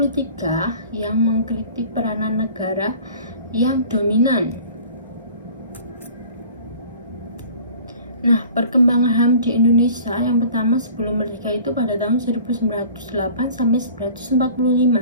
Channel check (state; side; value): inverted; both; correlation -0.46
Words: yang mengkritik peranan negara yang dominan. Nah, perkembangan HAM di Indonesia yang pertama sebelum merdeka itu pada tahun 1908 sampai